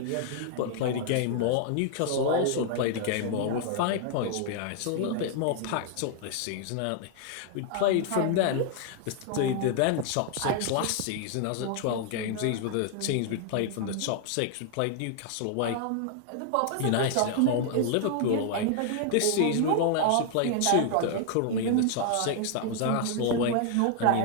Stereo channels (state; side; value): different; both; correlation 0.00